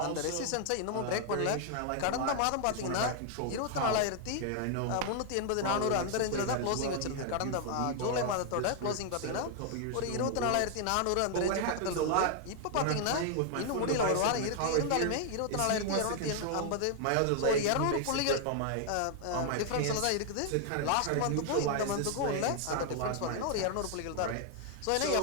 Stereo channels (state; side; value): different; both; correlation 0.00